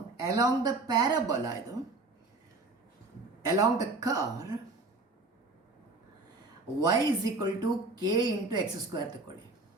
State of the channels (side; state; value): left; quieter; 3.3 dB